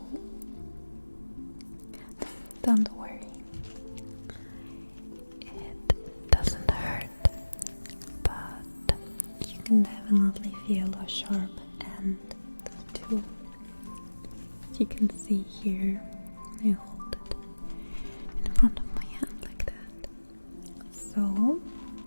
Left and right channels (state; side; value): inverted; both; correlation -1.00